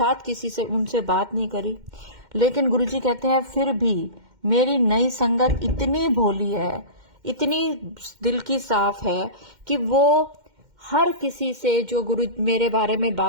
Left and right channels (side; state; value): left; late; 2.1 ms